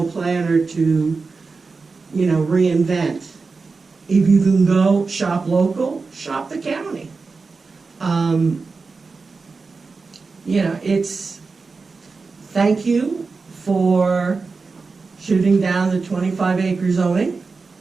planner to, reinvent. If you can go shop local, shop the county. Thank you for shooting down the 25-acre zoning,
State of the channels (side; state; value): left; quieter; 4.3 dB